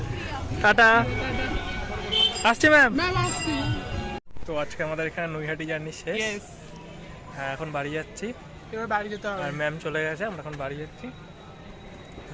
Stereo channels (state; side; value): identical; both; correlation 1.00